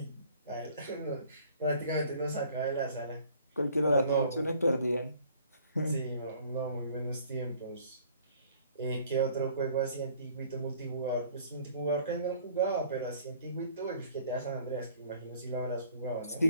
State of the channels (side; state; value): both; inverted; correlation -0.56